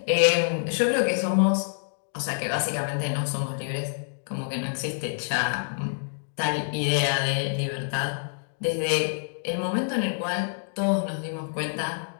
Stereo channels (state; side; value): silent; right; digital silence